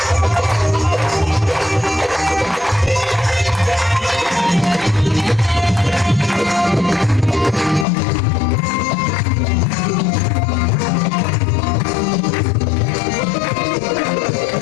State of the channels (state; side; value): drops out; right; at 7.9 s